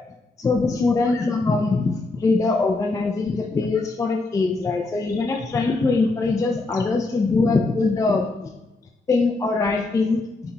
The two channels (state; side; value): quieter; right; 3.4 dB